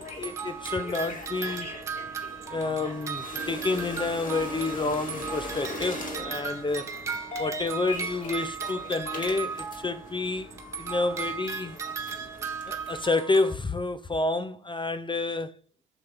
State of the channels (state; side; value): normal; both; correlation 0.56